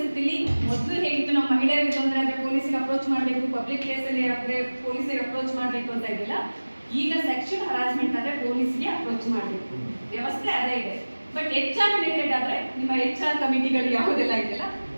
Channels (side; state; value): both; inverted; correlation -1.00